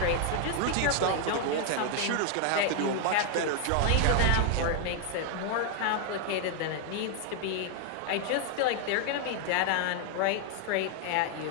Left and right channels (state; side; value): different; both; correlation 0.00